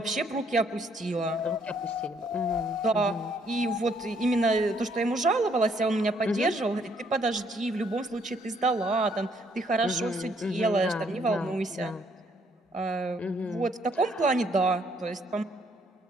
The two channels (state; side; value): normal; both; correlation 0.68